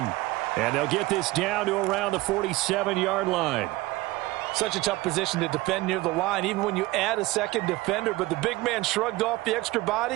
And they'll get this down to around the 47-yard line. Such a tough position to defend near the line, even when you add a second defender. But the big man shrugged off the extra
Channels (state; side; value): quieter; left; 19.5 dB